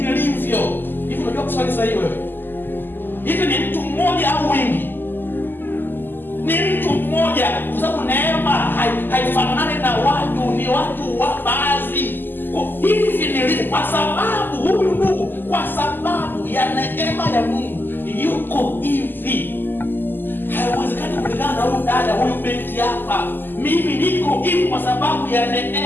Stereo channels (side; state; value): right; late; 0.092 ms